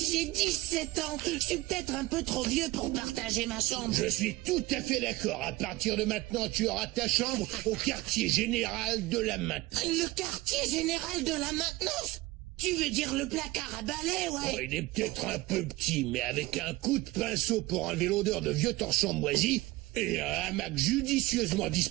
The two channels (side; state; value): left; quieter; 19.3 dB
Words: j'ai 17 ans. Je suis peut-être un peu trop vieux pour partager ma chambre. Je suis tout à fait d'accord. À partir de maintenant, tu auras ta chambre au quartier général de la maintenance. Le quartier général de la maintenance? Tu veux dire le placard à balai, ouais? Oh, il est peut-être un peu petit, mais avec un coup de pinceau pour enlever l'odeur de vieux torchons moisis et un hamac judicieusement